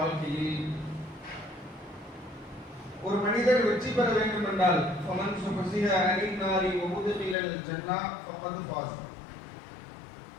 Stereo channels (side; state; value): right; drops out; at 7.4 s